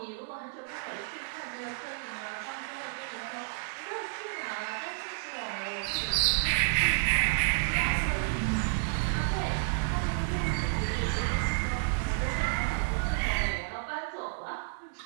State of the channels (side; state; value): left; silent; digital silence